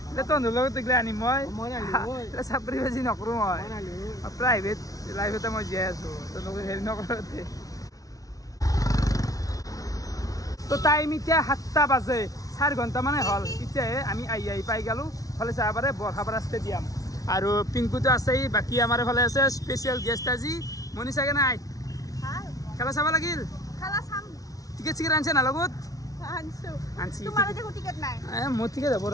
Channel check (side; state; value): right; late; 0.18 ms